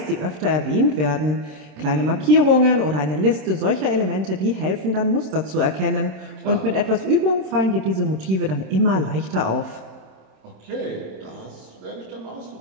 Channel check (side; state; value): left; late; 27 ms